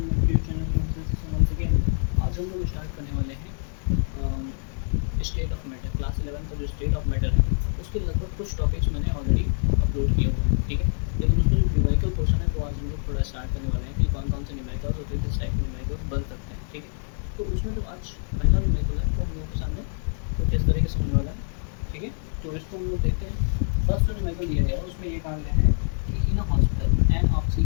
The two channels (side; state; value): right; silent; 61 dB below the other